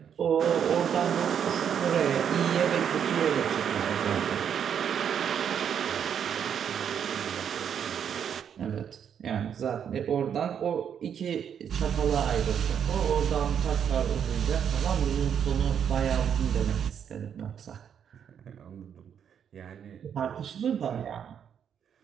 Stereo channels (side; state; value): left; quieter; 8.3 dB